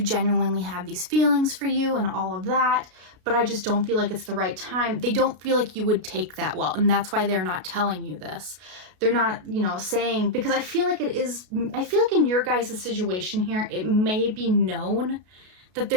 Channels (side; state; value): left; late; 33 ms